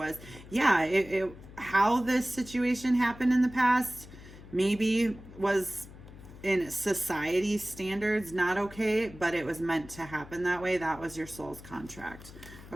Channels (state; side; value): noise; left; hum, 17 dB below the sound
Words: yeah, how this situation happened in the past maybe was in society standards not okay, but it was meant to happen that way. That was your soul's contract.